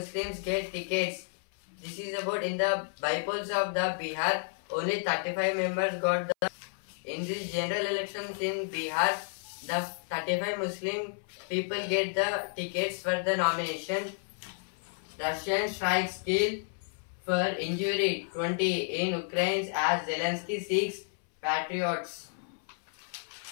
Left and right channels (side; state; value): right; silent; 57 dB below the other